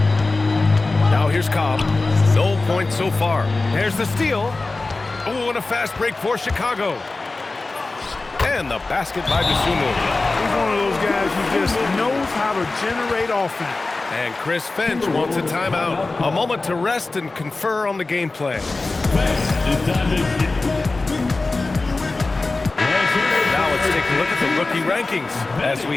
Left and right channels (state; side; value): quieter; right; 3.4 dB